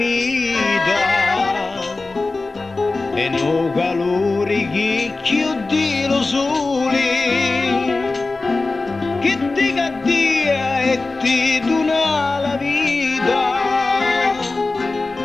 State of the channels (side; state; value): right; quieter; 3.5 dB